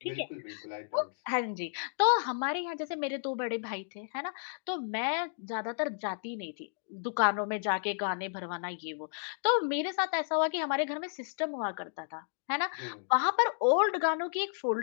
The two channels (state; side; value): silent; right; digital silence